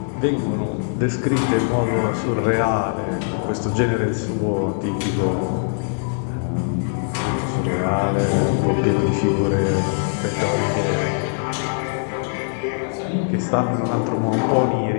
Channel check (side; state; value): right; silent; digital silence